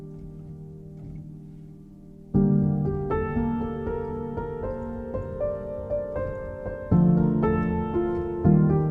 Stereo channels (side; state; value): both; identical; correlation 1.00